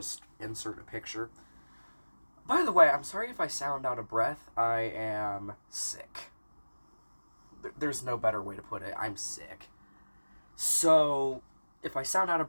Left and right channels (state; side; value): inverted; both; correlation -1.00